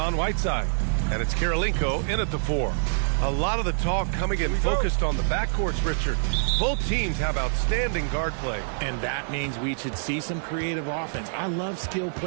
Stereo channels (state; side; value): silent; left; digital silence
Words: Whiteside, and it's Kirilenko in at the 4. A lot of the talk coming in focused on the backcourts, Richard. Both teams have outstanding guard play. And that means we should see some creative offense. I love skill